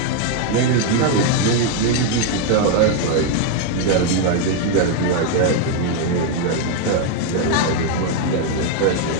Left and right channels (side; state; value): both; different; correlation 0.01